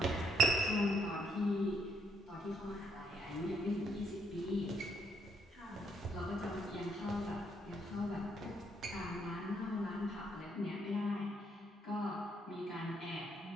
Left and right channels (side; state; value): both; normal; correlation 0.72